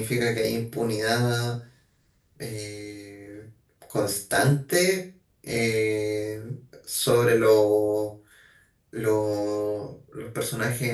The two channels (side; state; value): both; identical; correlation 1.00